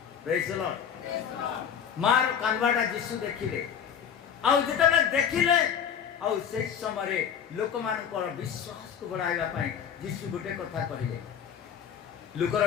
ପ୍ରେଜ୍ ଦ ଲର୍ଡ। ମାର କାନ୍ଦବାଟା ଯୀଶୁ ଦେଖିଲେ। ଆଉ ଯେତେବେଳେ ଦେଖିଲେ, ଆଉ ସେହି ସମୟରେ ଲୋକମାନଙ୍କର ବିଶ୍ୱାସକୁ ବଢ଼ାଇବା ପାଇଁ ଯୀଶୁ ଗୋଟେ କଥା କହିଲେ।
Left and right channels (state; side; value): quieter; right; 8.1 dB